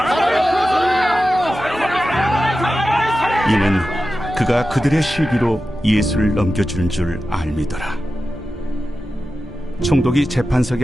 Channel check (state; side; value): normal; both; correlation 0.93